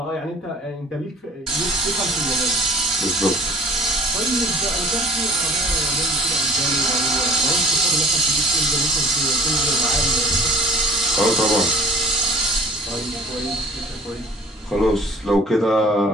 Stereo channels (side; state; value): both; normal; correlation 0.51